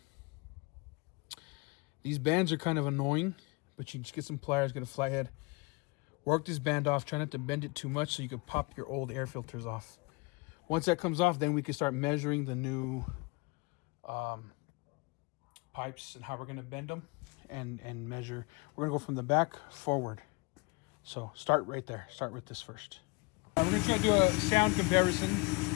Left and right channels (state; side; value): quieter; right; 27.0 dB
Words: These bands are kind of annoying, but you just get some pliers, get a fly head, work this band off, try not to bend it too much so you can pop your old air filters off. Once that comes off, then we can start measuring the new pipes and how we're gonna bend them and measure. We're gonna go from the back forward. So start right there, start with this first. We're gonna try to do a sound comparison.